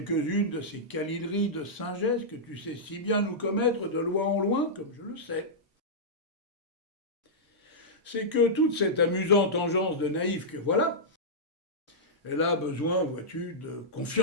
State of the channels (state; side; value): normal; both; correlation -0.11